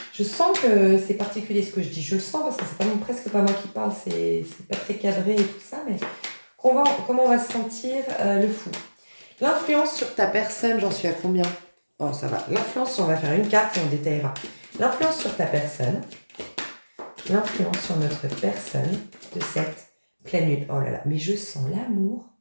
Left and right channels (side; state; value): both; inverted; correlation -1.00